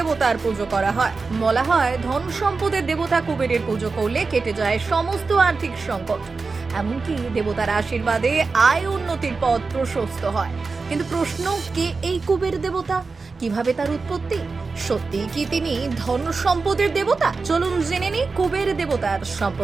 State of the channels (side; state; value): left; quieter; 4.3 dB